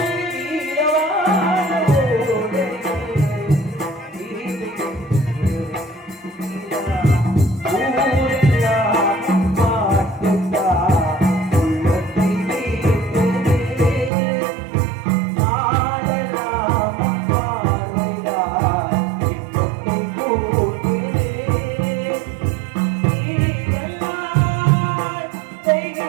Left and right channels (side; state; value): left; drops out; at 14.1 s